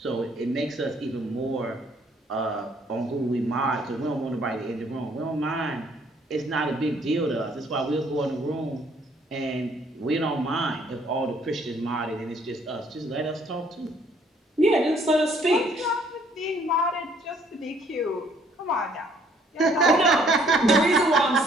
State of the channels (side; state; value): both; normal; correlation 0.63